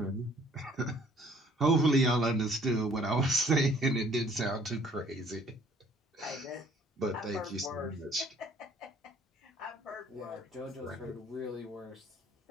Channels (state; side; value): normal; both; correlation 0.58